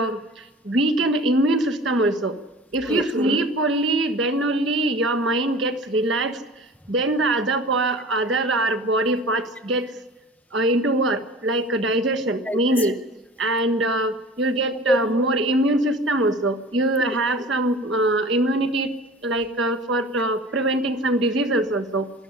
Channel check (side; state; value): both; normal; correlation 0.41